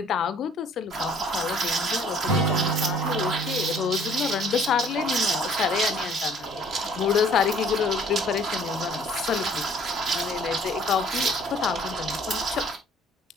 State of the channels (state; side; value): normal; both; correlation 0.56